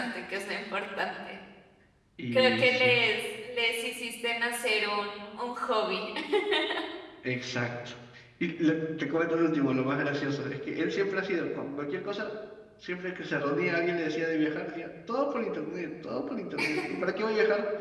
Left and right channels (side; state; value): both; identical; correlation 1.00